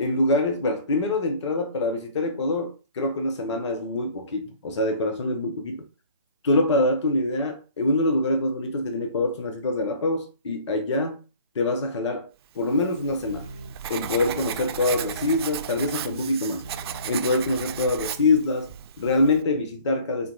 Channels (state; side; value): inverted; both; correlation -0.50